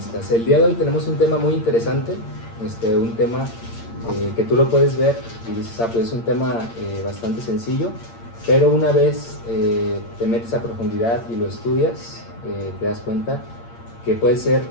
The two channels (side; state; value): right; late; 8.7 ms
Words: El día de hoy tenemos un tema muy interesante, un tema que tú lo puedes ver y dices, pues es un tema bastante sencillo, pero una vez te metes a profundidad y lo estudias, te das cuenta que puede ser